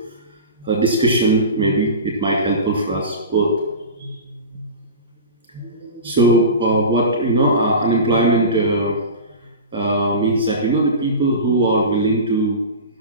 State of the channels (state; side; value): inverted; both; correlation -0.31